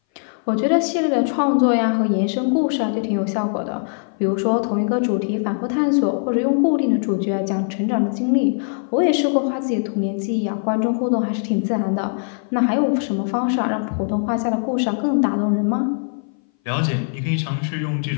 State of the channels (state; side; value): silent; right; 60 dB below the other